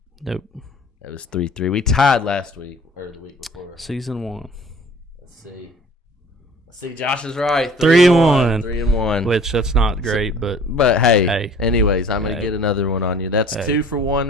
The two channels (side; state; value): both; normal; correlation 0.49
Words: Nope. That was 3-3. We tied last week or the week before. Season 1. Let's see. Josh is right. 3-1. 3-1. Which that's not great, but hey. Anyways, I'm gonna get another one on you. That's 2 for 1